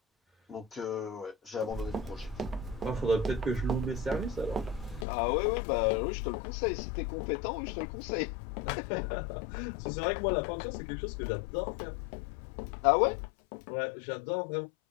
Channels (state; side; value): drops out; right; at 5.1 s